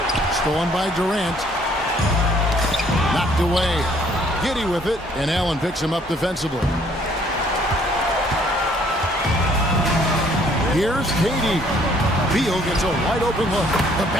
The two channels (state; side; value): normal; both; correlation 0.62